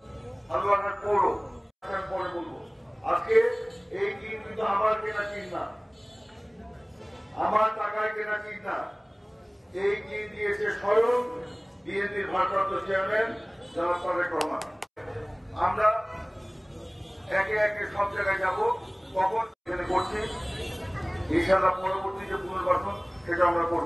হালুয়াঘাট পৌর পরে বলবো, আজকে এই টিম কিন্তু আমার কেনা টিম না, আমার টাকায় কেনা টিম না। এই টিম দিয়েছে স্বয়ং বিএনপির ভারপ্রাপ্ত চেয়ারম্যান জনাব তারেক রহমান। আমরা একে একে সব জায়গায় যাব, কখন এখানে করছি ইনশাআল্লাহ পরবর্তী যে পুনর্বাসন সেটা আমরা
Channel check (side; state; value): both; identical; correlation 1.00